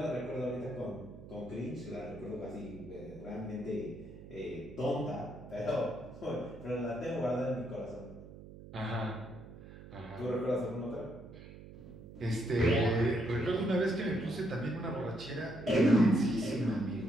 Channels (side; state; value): right; noise; hum, 15 dB below the sound